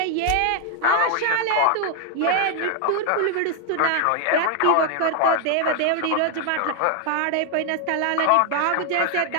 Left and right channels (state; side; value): different; both; correlation 0.00